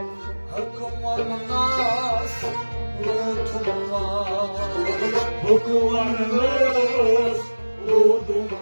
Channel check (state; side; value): inverted; both; correlation -1.00